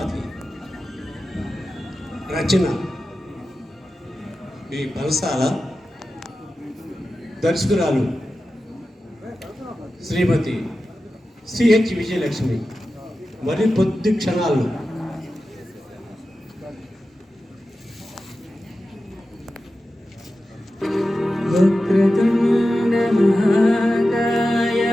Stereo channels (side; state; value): both; normal; correlation 0.93